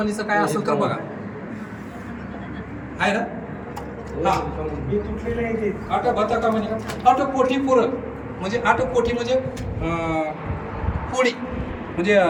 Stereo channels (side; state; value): both; identical; correlation 1.00